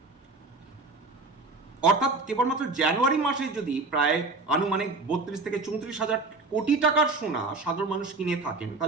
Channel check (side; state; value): left; quieter; 3.5 dB